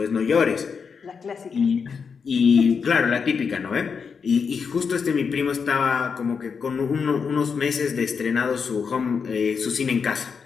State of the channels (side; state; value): right; quieter; 5.9 dB